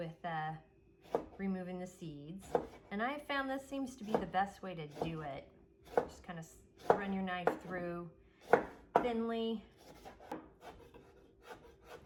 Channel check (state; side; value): identical; both; correlation 1.00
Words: removing the seeds. And I found this seems to be the best way to do it. Just kind of run your knife through thinly.